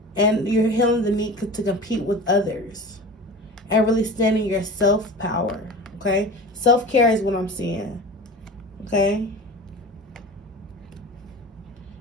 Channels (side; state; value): both; normal; correlation 0.34